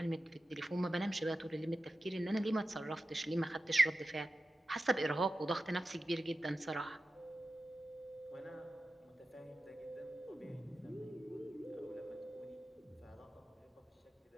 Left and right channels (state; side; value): normal; both; correlation 0.93